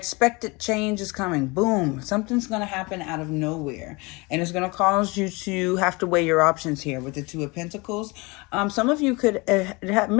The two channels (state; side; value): quieter; right; 26.1 dB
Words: change is coming. Boom, something's going to happen out of nowhere. And it's going to cause you to have to weigh your options here with the 2 of Pentacles. Some of you could